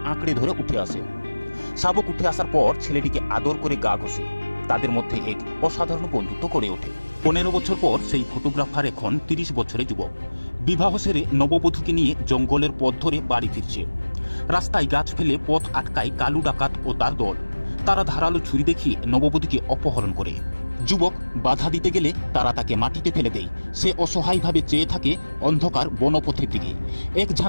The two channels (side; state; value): both; inverted; correlation -1.00